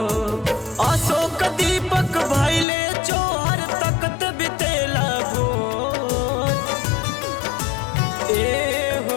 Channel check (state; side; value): drops out; right; at 2.7 s